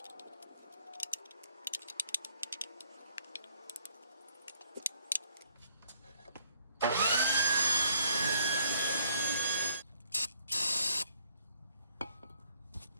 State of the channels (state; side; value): inverted; both; correlation -0.66